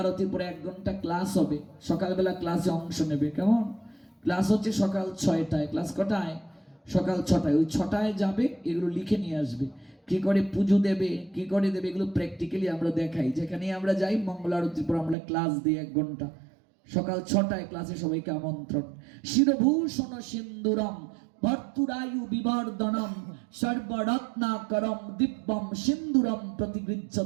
পরে 1 ঘন্টা ক্লাস হবে। সকালবেলা ক্লাসে অংশ নেবে, কেমন? ক্লাস হচ্ছে সকাল 6টায়। ক্লাস কটায়? সকাল 6টায়। ওই 6টায় যাবে, এগুলো লিখে নিয়ে আসবে। কি করে পুজো দেবে, কি করে দেবে, এগুলো প্র্যাকটিক্যালি আমরা দেখাই। যেখানে আমরা যাই মঙ্গল আরতির পর আমরা ক্লাস দিই 1 ঘন্টা। সকাল 6টায় ক্লাসে সবাইকে আমন্ত্রণ। শিরভূষণ সিন্দুরম ভর্তুরায়ু বিবর্ধনম সর্বরত্নাকরম দিব্যম সিন্দুরম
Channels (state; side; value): drops out; left; at 15.2 s